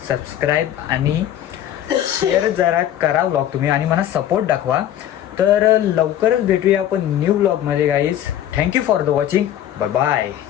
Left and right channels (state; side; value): quieter; right; 11.3 dB